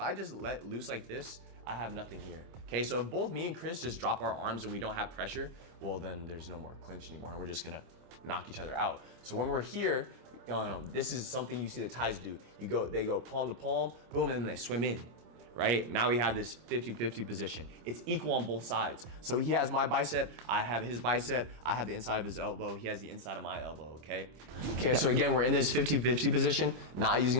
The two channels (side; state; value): left; late; 26 ms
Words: I just let loose like this, I have nothing here. Okay, so if both me and Chris just drop our arms and we don't have pressure, well, then there's no more clinch anymore, and we're just gonna knock each other out. So when we're here, this is something you see the Thais do. They go palm to palm, boom, and then they swim in. Right? Now we have this 50-50 position. It's equal on both sides. So he has my bicep, I have his bicep, I have the inside of his elbow, he has the inside of my elbow, okay? Okay, so again, we're in this 50-50 position, not